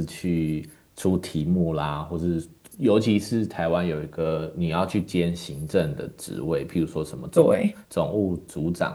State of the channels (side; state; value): both; identical; correlation 1.00